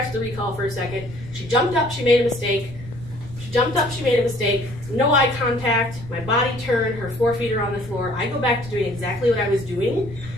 the recall for a second. She jumped up, she made a mistake. She jumped up, she made a mistake. No eye contact, my body turned, her 4 feet are on the floor. I go back to doing exactly what I was doing,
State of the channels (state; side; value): noise; right; rumble, 15 dB below the sound